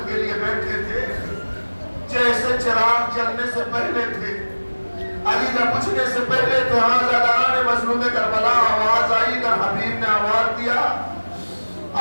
کے لیے بیٹھے تھے جیسے چراغ جلنے سے پہلے تھے, علی نہ پوچھنے سے پہلے تھے. ہاں زاداران مظلوم کربلا, آواز آئی کہ حبیب نے آواز دیا,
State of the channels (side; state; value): both; inverted; correlation -1.00